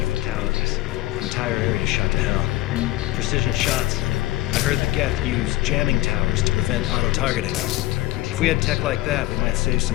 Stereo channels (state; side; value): quieter; right; 17.2 dB